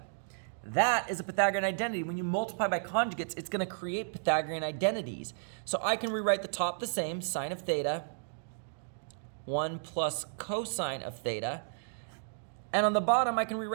That is a Pythagorean identity. When you multiply by conjugates, it's going to create Pythagorean identities. So I can rewrite the top the same, sine of theta, 1 plus cosine of theta. And on the bottom, I can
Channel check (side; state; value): left; silent; digital silence